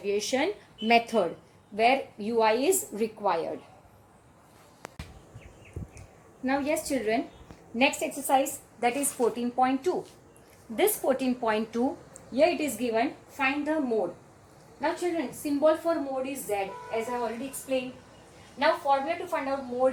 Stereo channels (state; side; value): identical; both; correlation 1.00